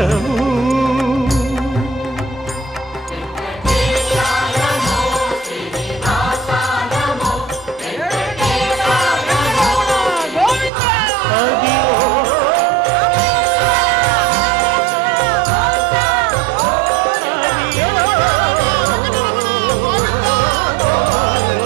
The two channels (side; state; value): left; drops out; at 10.7 s